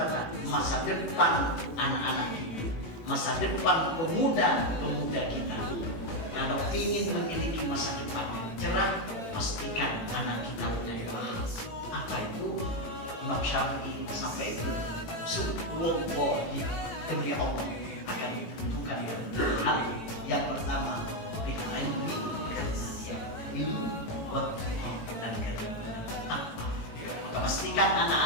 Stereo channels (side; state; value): right; late; 18 ms